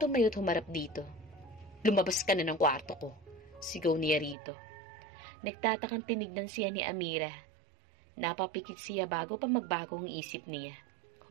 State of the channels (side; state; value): left; drops out; at 4.4 s